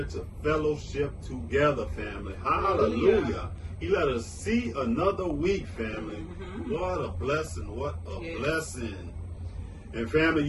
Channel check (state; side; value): identical; both; correlation 1.00